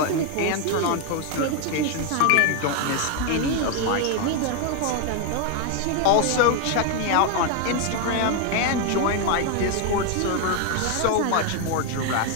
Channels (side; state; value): both; different; correlation 0.01